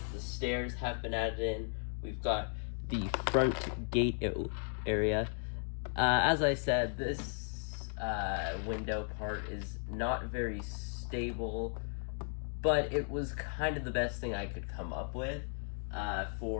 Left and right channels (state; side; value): silent; right; 54 dB below the other